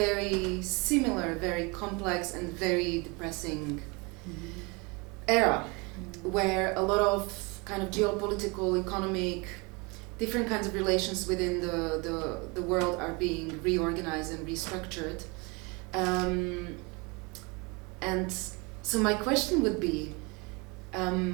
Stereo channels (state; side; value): quieter; left; 28.6 dB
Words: similar, very complex and very depressing era, where a lot of kind of geopolitical, economic, different kinds of relations within the world are being reorganized and restructured. And so my question would be,